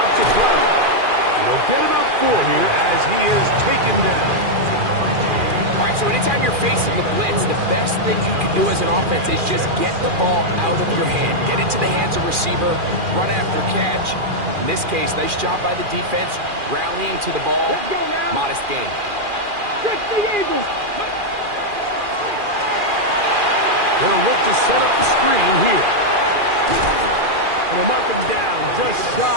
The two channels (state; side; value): late; left; 2.4 ms